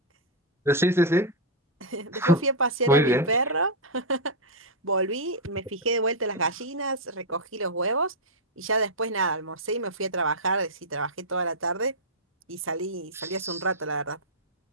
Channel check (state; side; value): normal; both; correlation -0.05